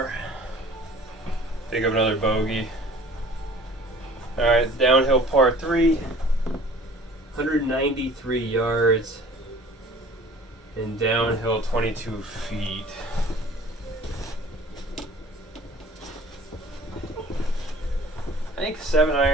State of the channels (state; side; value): normal; both; correlation 0.48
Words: Pick up another bogey. Alright, downhill par 3. 193 yards. And downhill 22 feet. I think